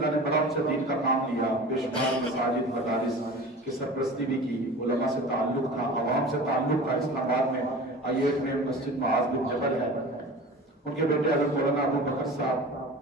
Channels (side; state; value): both; normal; correlation 0.37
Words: نے بڑا ان سے دین کا کام لیا، بے شمار مساجد مدارس کی سرپرستی بھی کی، علماء سے تعلق تھا، عوام سے تعلق تھا. اسلام آباد میں I8 میں مسجد معاذ بن جبل ہے. ان کے بیٹے حضرت مولانا ابو بکر صاحب